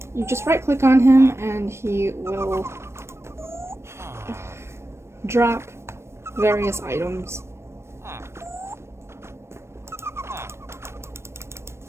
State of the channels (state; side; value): late; left; 0.13 ms